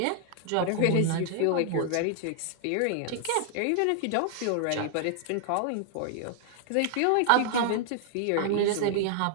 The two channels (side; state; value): both; different; correlation -0.01